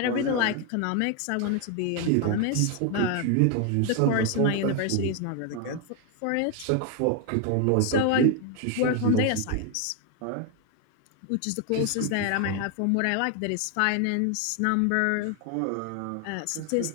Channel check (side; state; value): both; different; correlation 0.01